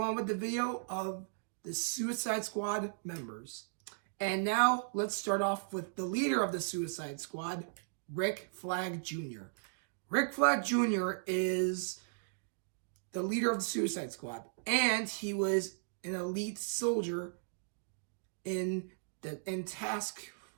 on with the video of the Suicide Squad members. And now, let's start off with the leader of the Suicide Squad, Rick Flag Jr. Rick Flag Jr. is the leader of the Suicide Squad, and he was an elite soldier in Task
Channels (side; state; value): left; silent; digital silence